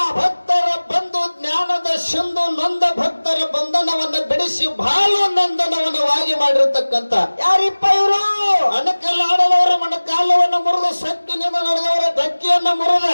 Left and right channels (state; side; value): inverted; both; correlation -1.00